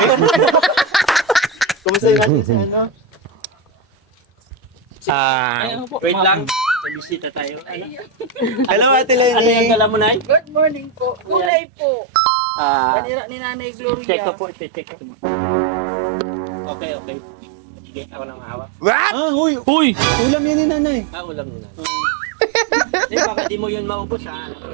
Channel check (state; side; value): drops out; left; at 11.5 s